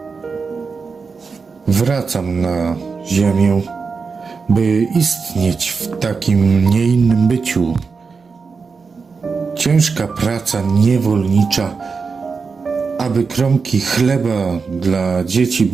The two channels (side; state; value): left; quieter; 4.9 dB